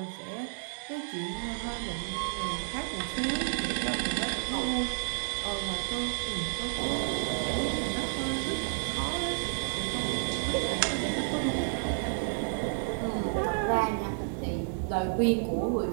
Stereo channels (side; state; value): left; silent; digital silence